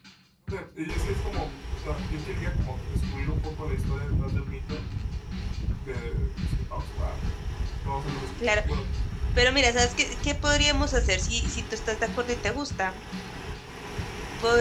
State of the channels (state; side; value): identical; both; correlation 1.00